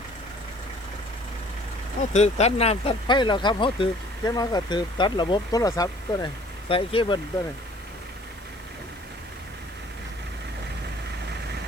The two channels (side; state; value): left; noise; hiss, 26 dB below the sound